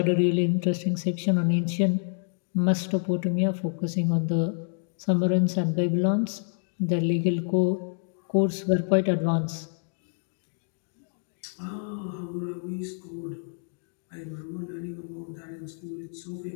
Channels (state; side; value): silent; right; 60 dB below the other